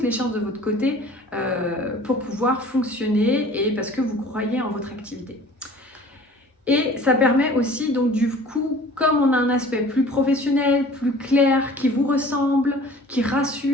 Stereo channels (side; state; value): both; normal; correlation 0.47